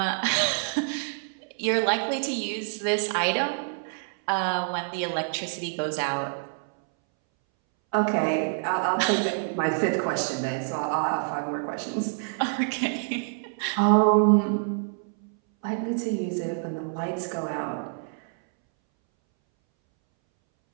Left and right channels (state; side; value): silent; left; 60 dB below the other